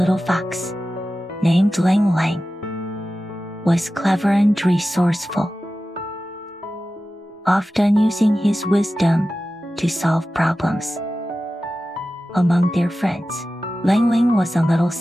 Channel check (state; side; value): normal; both; correlation 0.94